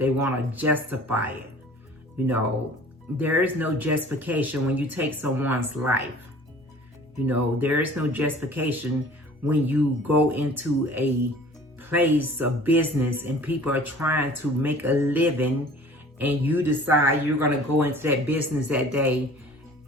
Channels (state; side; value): normal; both; correlation 0.48